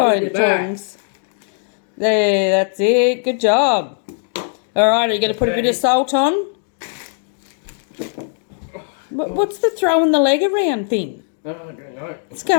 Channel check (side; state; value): right; silent; 60 dB below the other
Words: tongs? There, that's it. Good job. All right, are you going to put a bit of salt on? What's the throwing the leg around thing? Oh, I don't know. What's